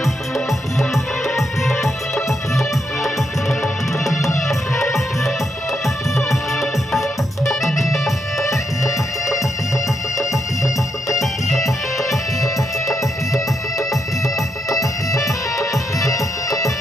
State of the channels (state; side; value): normal; both; correlation 0.80